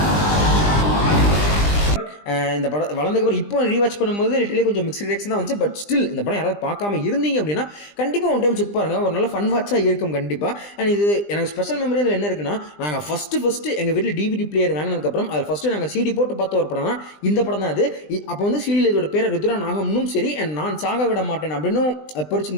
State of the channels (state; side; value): late; right; 20 ms